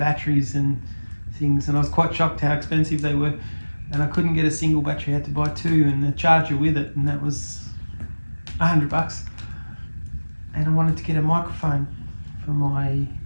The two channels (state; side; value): inverted; both; correlation -1.00